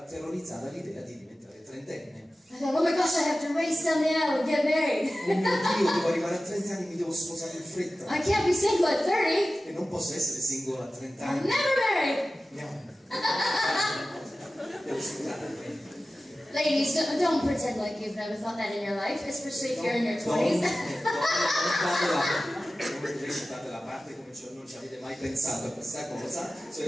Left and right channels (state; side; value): normal; both; correlation 0.95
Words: terrorizzata l'idea di diventare trentenne. I thought, oh my gosh, I have to race down the aisle and get married. Oh mio Dio, devo arrivare a 30 anni, mi devo sposare in fretta. I can't be single at 30. E non posso essere singolo a 30 I'm anni. never married. No. Devo scusare. Ladies, don't pretend like you've never thought that in your life, especially if you're in your 20s. Non recitate la parte come non ci avete mai pensato a questa cosa,